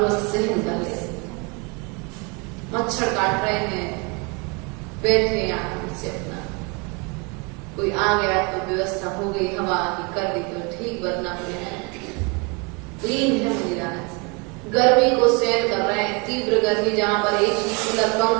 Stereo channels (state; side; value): quieter; left; 30.5 dB